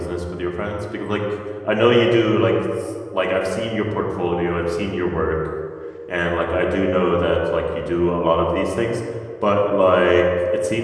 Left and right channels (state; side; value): identical; both; correlation 1.00